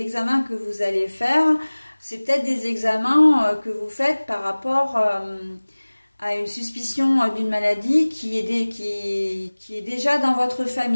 que vous allez faire, c'est peut-être des examens que vous faites par rapport à une suspicion d'une maladie qui est déjà dans votre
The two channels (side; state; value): both; inverted; correlation -1.00